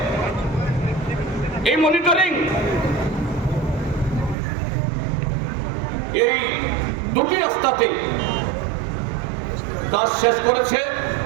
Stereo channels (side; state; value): left; drops out; at 4.4 s